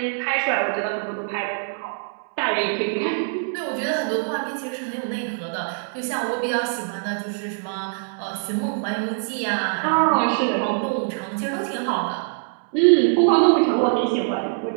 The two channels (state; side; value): silent; left; 63 dB below the other